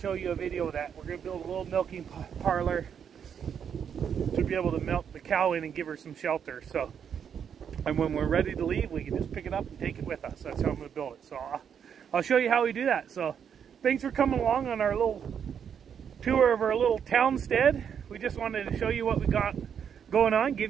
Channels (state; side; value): quieter; left; 7.8 dB